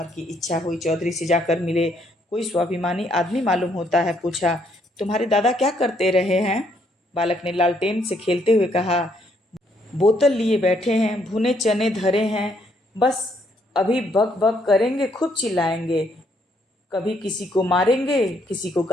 की इच्छा हुई चौधरी से जाकर मिले। कोई स्वाभिमानी आदमी मालूम होता है। पूछा, तुम्हारे दादा क्या करते रहे हैं? बालक ने लालटेन से खेलते हुए कहा, बोतल लिए बैठे हैं, भुने चने धरे हैं, बस अभी बक बक करेंगे, खूब चिल्लाएंगे, कभी किसी को मारेंगे, किसी को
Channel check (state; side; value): normal; both; correlation 0.71